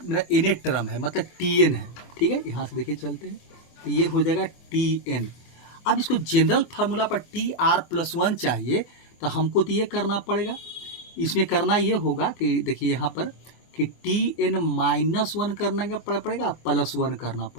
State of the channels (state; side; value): late; right; 24 ms